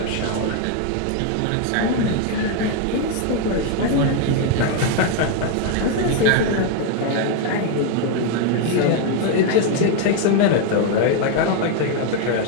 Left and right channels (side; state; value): both; different; correlation 0.01